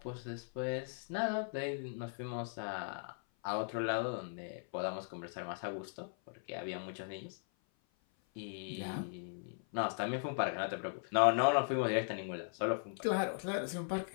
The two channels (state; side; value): silent; right; 52 dB below the other